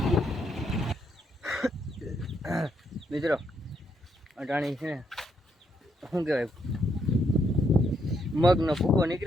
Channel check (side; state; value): both; normal; correlation 0.76